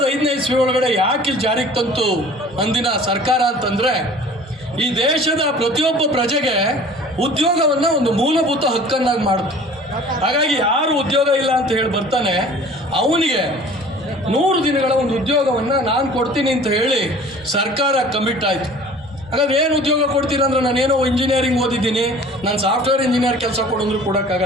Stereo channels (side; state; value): both; normal; correlation 0.46